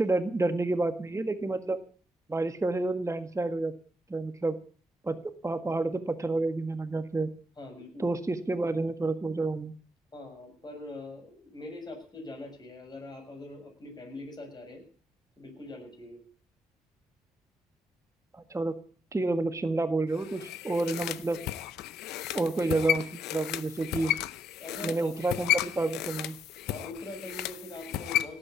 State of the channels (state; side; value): normal; both; correlation 0.78